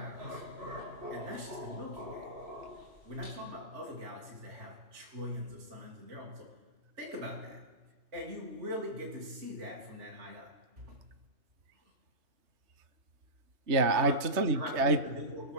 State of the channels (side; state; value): left; late; 3.2 ms